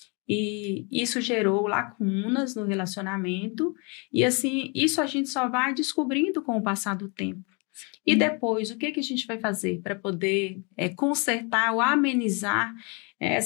E isso gerou lacunas no relacionamento. E, assim, isso a gente só vai descobrindo com o passar do tempo. E depois, o que a gente vai fazer para poder consertar ou amenizar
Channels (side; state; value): right; quieter; 32.9 dB